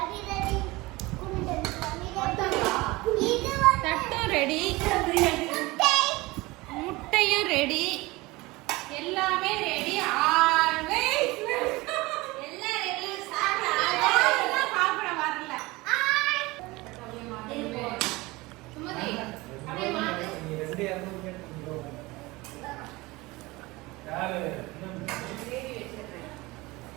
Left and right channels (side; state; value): left; quieter; 21.8 dB